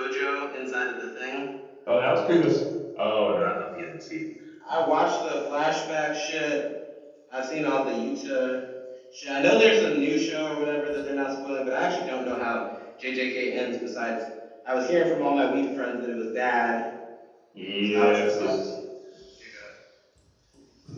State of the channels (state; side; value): identical; both; correlation 1.00